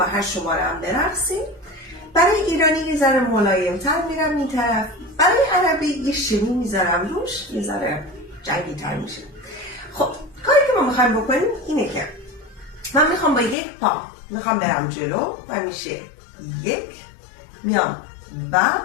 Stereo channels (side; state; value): right; drops out; at 13.6 s